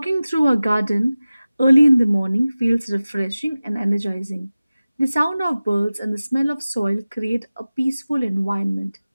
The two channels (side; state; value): both; inverted; correlation -0.97